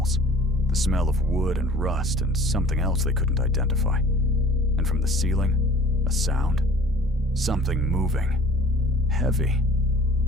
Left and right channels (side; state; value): both; normal; correlation 0.48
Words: The smell of wood and rust and something else they couldn't identify. And from the ceiling, a sound. Something moving. Heavy.